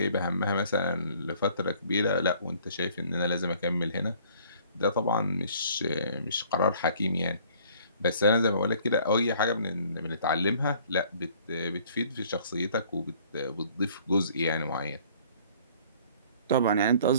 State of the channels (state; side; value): inverted; both; correlation -0.56